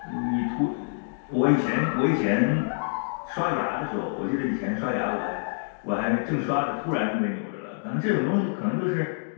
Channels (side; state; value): right; silent; digital silence